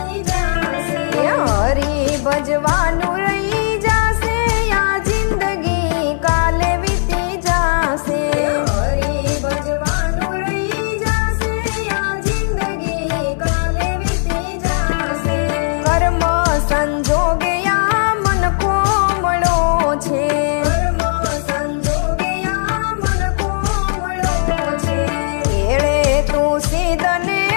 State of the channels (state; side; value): silent; right; 68 dB below the other